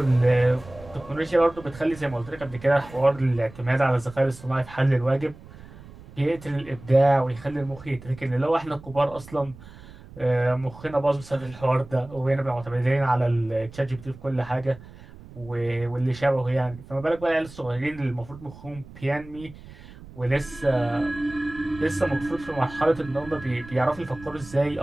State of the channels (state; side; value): noise; right; rumble, 19 dB below the sound